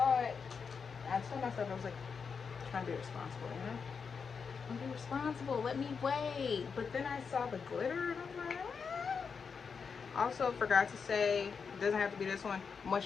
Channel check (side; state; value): right; quieter; 5.8 dB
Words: it. I told myself, I was like, trying to be responsible, you know? I'm be responsible. Let me wait. But then I saw the glitter, and I'm like, Also, forgot to say, it doesn't have to be this one.